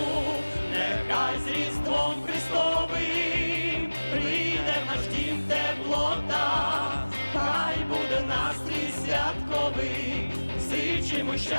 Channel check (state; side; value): inverted; both; correlation -1.00